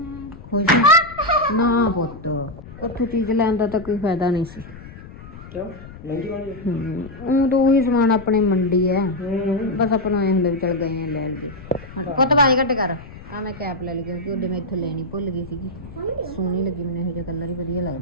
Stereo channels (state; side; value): noise; left; rumble, 16 dB below the sound